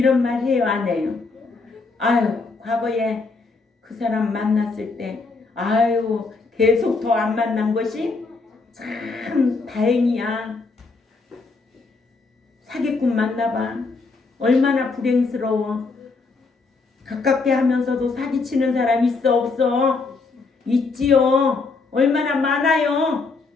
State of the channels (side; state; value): right; quieter; 4.1 dB